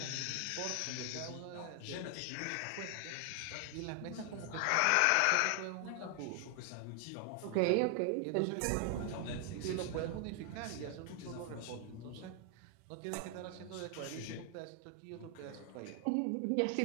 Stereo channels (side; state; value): both; different; correlation 0.00